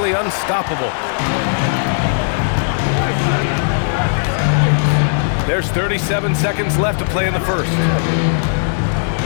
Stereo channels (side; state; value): right; silent; digital silence